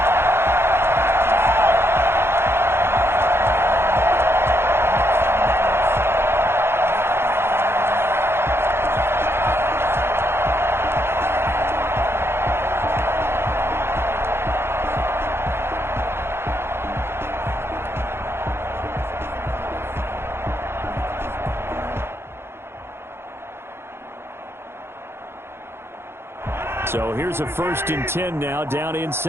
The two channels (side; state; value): left; late; 0.12 ms